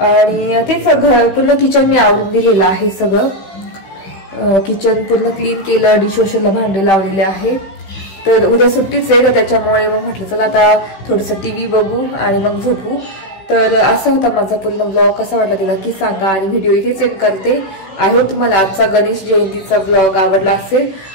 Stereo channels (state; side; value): late; right; 16 ms